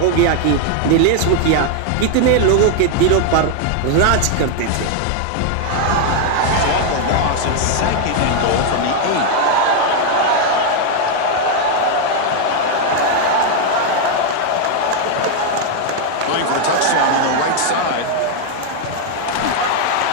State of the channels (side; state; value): both; different; correlation 0.00